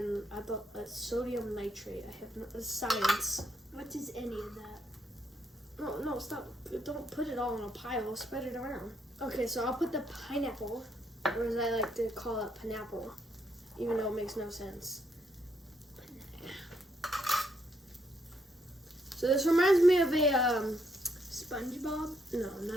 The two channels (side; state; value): both; normal; correlation 0.74